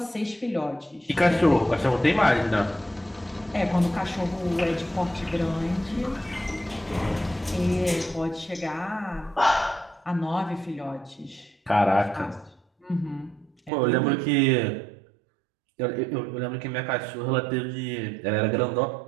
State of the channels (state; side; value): drops out; left; at 13.7 s